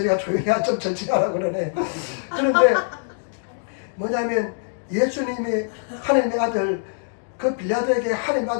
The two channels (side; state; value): right; silent; digital silence